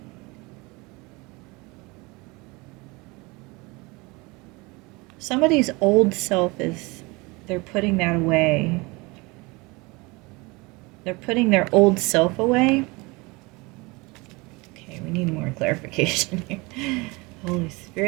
Somebody's old self they're putting that away. They're putting their old self away. Okay, we need more clarification here. Holy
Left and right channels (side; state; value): left; quieter; 25.3 dB